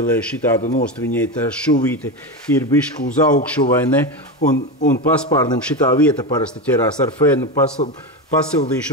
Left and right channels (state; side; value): normal; both; correlation 0.17